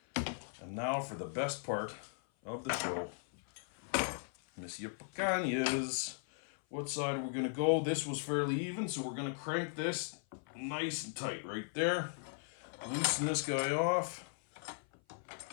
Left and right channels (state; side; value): silent; right; 53 dB below the other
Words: And now for the best part of the show. Monsieur Picanhas. What side are we going to go? This was fairly even, so we're going to crank this nice and tight right there. Loosen this guy off.